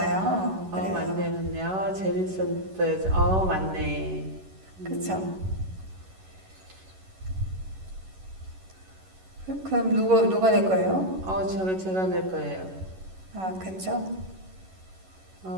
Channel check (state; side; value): late; left; 11 ms